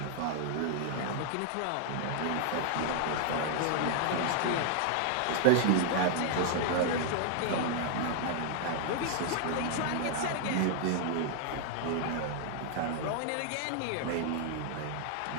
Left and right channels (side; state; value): both; different; correlation 0.00